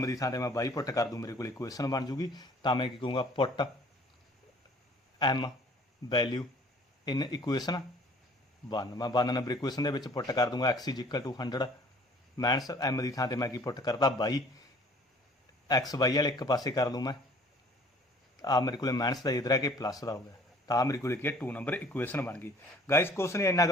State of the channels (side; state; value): both; normal; correlation 0.53